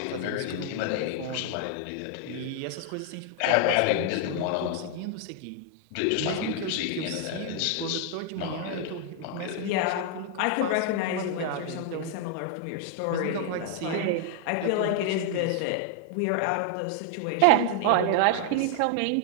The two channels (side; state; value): both; different; correlation 0.00